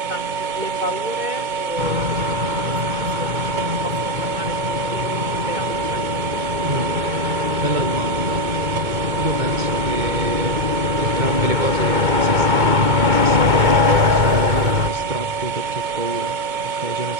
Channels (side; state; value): left; late; 2.2 ms